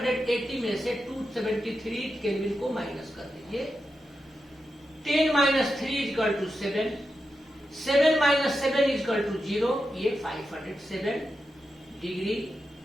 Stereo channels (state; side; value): normal; both; correlation 0.88